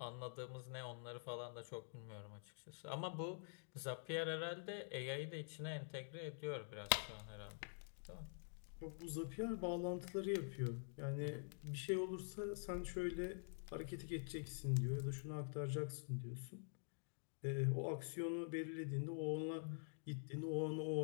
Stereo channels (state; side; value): silent; right; digital silence